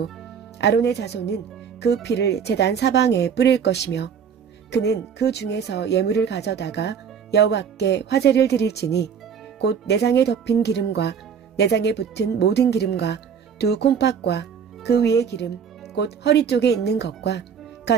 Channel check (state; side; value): quieter; left; 7.2 dB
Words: 아론의 자손은 그 피를 제단 사방에 뿌릴 것이며 그는 그 중에서 예물을 가져다가 여호와께 화제를 드릴지니 곧 내장에 덮인 기름과 내장에 붙은 모든 기름과 두 콩팥과 그 위의 기름 곧 허리 쪽에 있는 것과